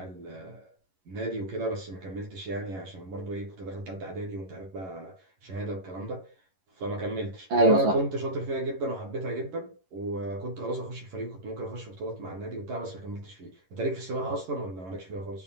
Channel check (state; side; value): late; left; 11 ms